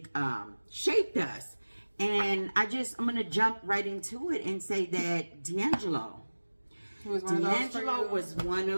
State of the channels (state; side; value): inverted; both; correlation -1.00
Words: shaped us. And I'm going to jump right into it and say that D'Angelo was one